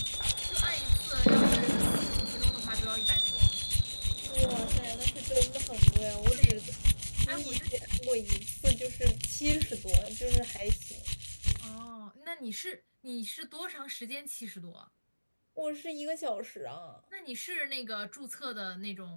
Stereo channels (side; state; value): both; inverted; correlation -1.00